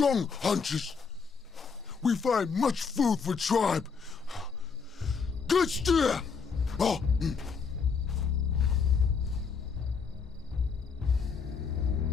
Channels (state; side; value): quieter; right; 5.6 dB